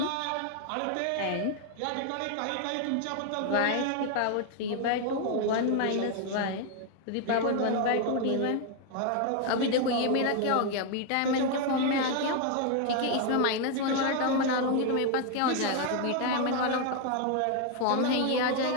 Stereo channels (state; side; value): different; both; correlation 0.01